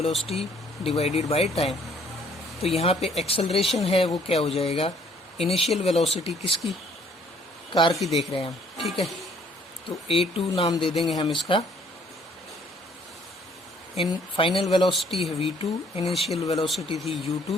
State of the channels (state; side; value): normal; both; correlation 0.61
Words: divided by time. तो यहाँ पे एक्सेलरेशन है वो क्या हो जाएगा, इनिशियल वेलोसिटी किसकी, कार की देख रहे हैं हम। ठीक है, तो a2 नाम दे देंगे हम इसका। इन फाइनल वेलोसिटी है v2, इनिशियल वेलोसिटी थी